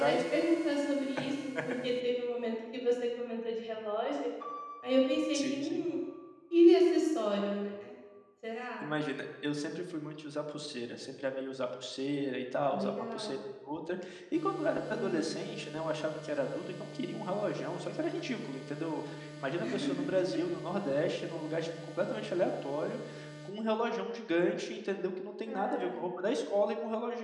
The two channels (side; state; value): both; identical; correlation 1.00